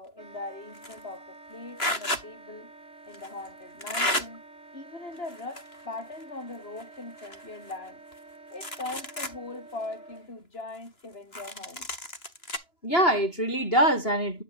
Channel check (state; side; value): late; right; 2.9 ms